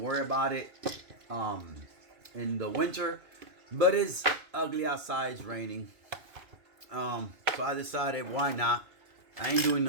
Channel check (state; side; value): late; left; 2.5 ms